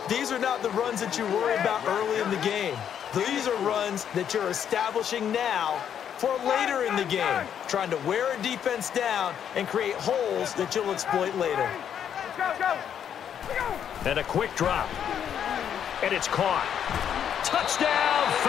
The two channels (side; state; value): right; quieter; 8.9 dB